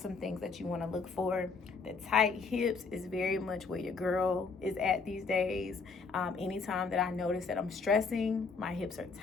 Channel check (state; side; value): quieter; right; 4.7 dB